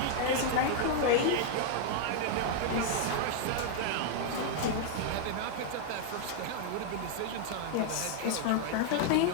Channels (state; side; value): different; both; correlation 0.00